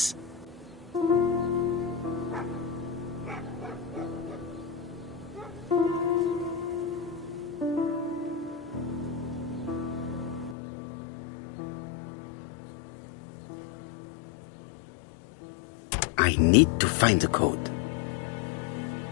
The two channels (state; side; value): drops out; right; at 10.6 s